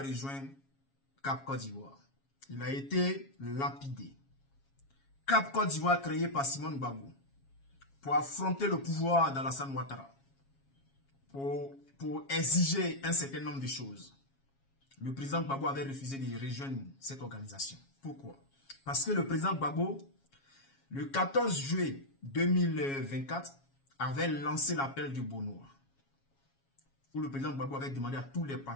Cap Côte d'Ivoire? Il a été lapidé. Cap Côte d'Ivoire créé par Simone Gbagbo pour affronter le pouvoir d'Alassane Ouattara, pour exiger un certain nombre de choses. Le président Gbagbo avait refusé de rejoindre cette organisation. Pourquoi? Parce que le président Gbagbo, le 14 juillet 2024, avait lancé l'appel du Bonnois, où le président Gbagbo avait demandé à tous les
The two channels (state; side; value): late; right; 7.3 ms